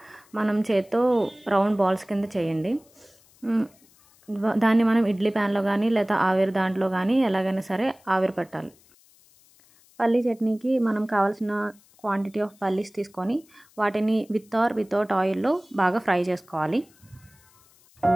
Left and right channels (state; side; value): noise; left; hiss, 30 dB below the sound